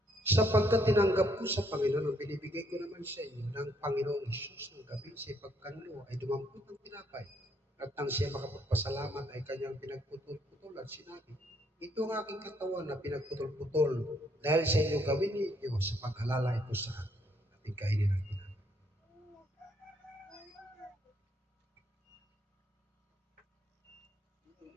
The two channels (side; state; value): both; normal; correlation 0.70